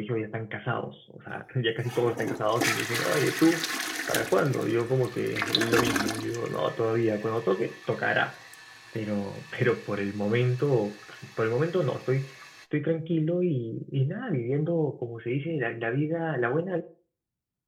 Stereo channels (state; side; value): identical; both; correlation 1.00